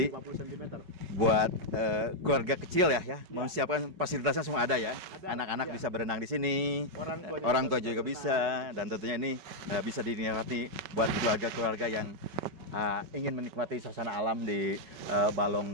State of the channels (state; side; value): late; left; 5.3 ms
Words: dan 50 cm. Buat keluarga kecil ya, mau siapkan fasilitasnya semua ada ya. Ada, Anak-anak ya. bisa berenang di sini, Orang tua tua juga bisa, dan tentunya ini bisa dinikmati buat keluarga-keluarga yang ingin menikmati suasana alam di